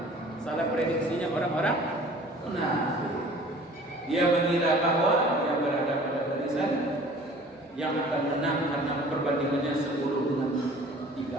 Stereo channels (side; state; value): both; normal; correlation 0.48